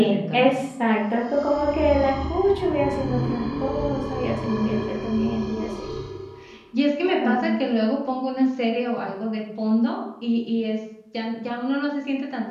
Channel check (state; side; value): identical; both; correlation 1.00